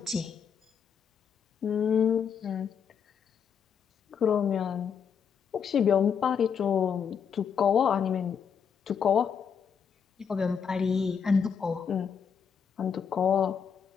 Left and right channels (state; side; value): quieter; right; 7.1 dB